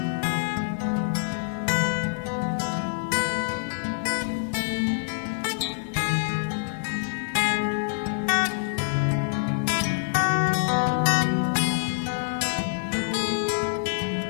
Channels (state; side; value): silent; right; digital silence